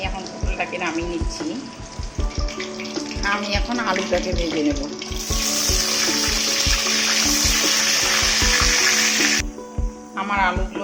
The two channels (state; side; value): identical; both; correlation 1.00